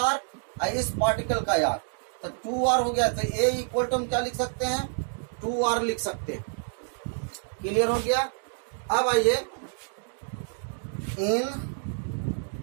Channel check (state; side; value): silent; left; digital silence